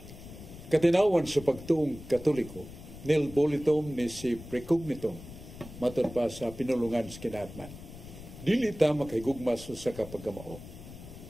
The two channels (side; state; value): left; noise; rumble, 15 dB below the sound